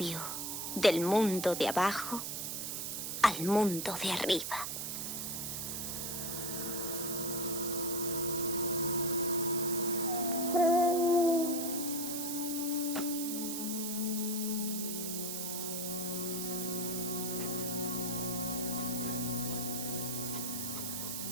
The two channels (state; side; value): noise; right; hiss, 3 dB below the sound